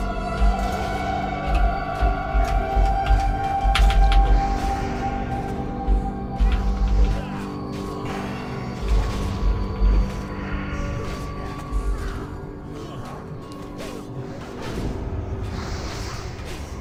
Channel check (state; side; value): identical; both; correlation 1.00